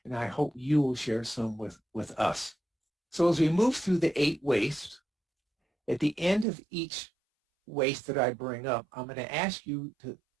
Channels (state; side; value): drops out; left; at 6.5 s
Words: and I hope you will share some with us. So as we move through the 8 wastes, at the end of each waste that I bring up, I'm going to ask you to